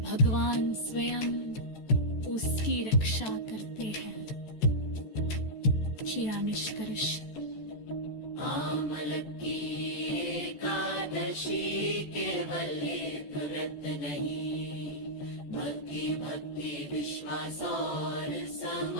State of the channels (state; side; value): late; right; 14 ms